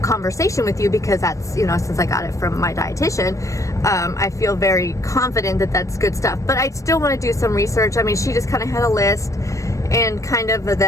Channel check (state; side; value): late; right; 0.15 ms